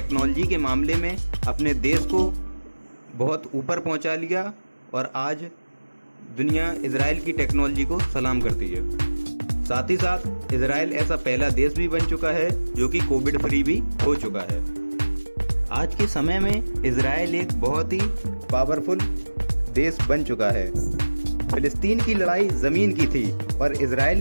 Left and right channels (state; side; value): inverted; both; correlation -1.00